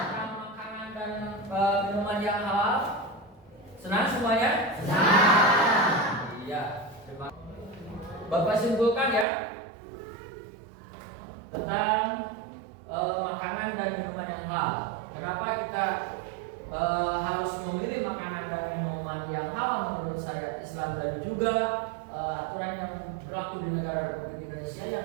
makanan dan minuman yang halal? Senang semuanya? Iya. Bapak simpulkan ya tentang makanan dan minuman yang halal. Kenapa kita harus memilih makanan dan minuman yang halal menurut syariat Islam dan juga aturan yang berlaku di negara Republik Indonesia yang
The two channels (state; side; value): drops out; left; at 9.2 s